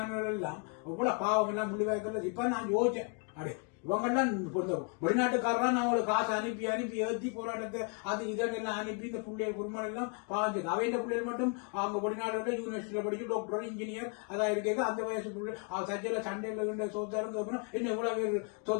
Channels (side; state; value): right; quieter; 36.3 dB